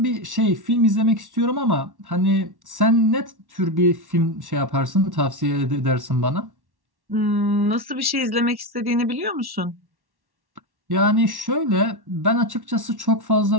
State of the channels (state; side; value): late; left; 1.1 ms